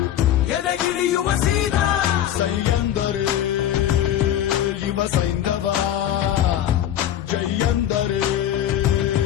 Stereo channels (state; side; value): quieter; right; 11.0 dB